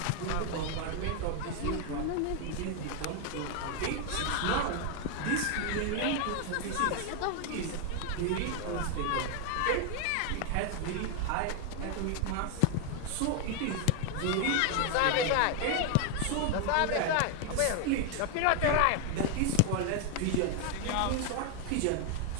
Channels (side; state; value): both; different; correlation 0.01